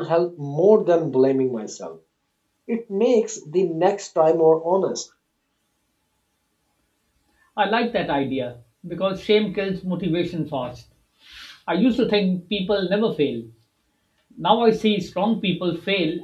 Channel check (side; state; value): both; identical; correlation 1.00